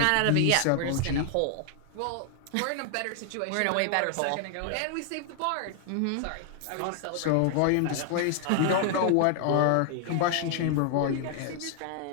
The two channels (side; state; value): both; different; correlation 0.00